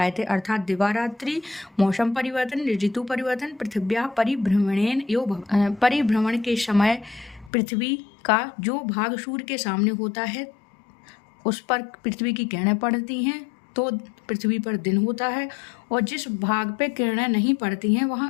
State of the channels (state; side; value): drops out; right; at 7.5 s